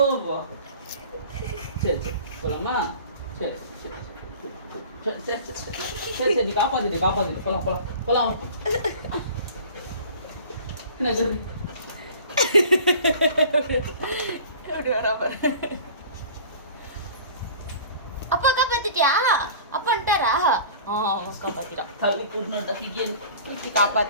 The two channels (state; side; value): inverted; both; correlation -0.43